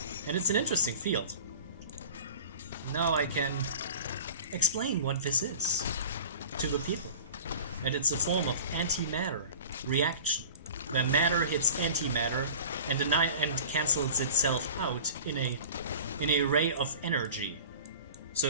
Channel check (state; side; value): inverted; both; correlation -0.41